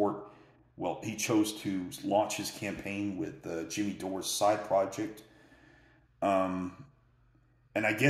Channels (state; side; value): identical; both; correlation 1.00